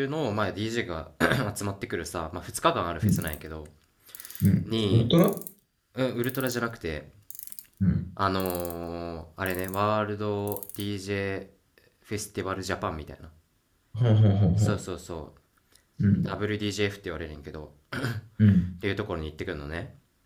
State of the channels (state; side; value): identical; both; correlation 1.00